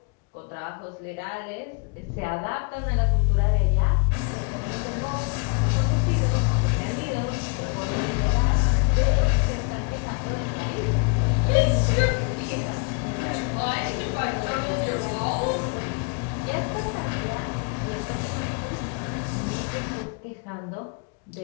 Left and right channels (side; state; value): right; quieter; 35.0 dB